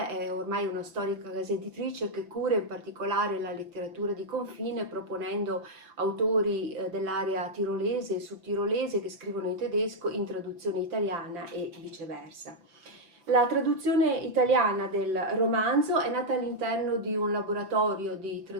è ormai una storica casa editrice che cura in particolare la letteratura di confine, proponendo autori dell'area tirolese e sudtirolese che scrivono in tedesco in traduzione italiana e viceversa. La traduzione italiana del romanzo è nata all'interno di un laboratorio di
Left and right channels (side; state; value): left; late; 5.9 ms